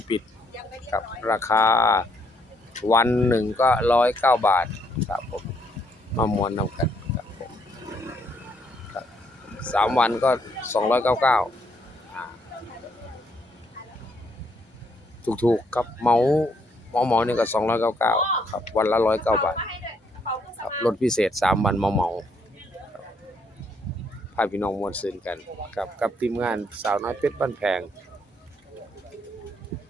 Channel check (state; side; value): normal; both; correlation 0.71